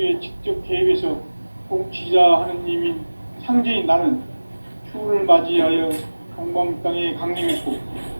직접 개입해서 통치자 하느님인 상제인 나는 추운을 맞이하여 동방 땅에 강림했고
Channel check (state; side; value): inverted; both; correlation -1.00